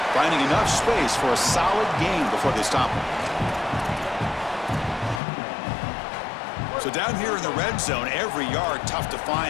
Finding enough space for a solid gain before they stop him. So down here in the red zone, every yard tough to find.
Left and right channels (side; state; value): right; drops out; at 5.2 s